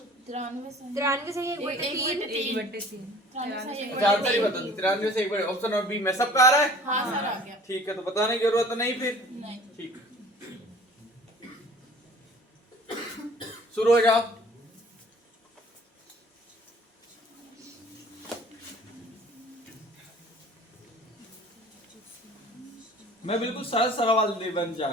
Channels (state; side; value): normal; both; correlation 0.49